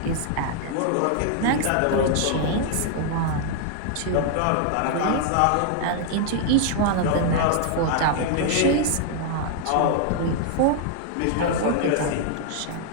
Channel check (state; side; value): different; both; correlation -0.01